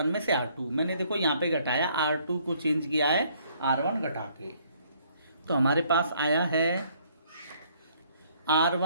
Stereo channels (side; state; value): both; inverted; correlation -0.64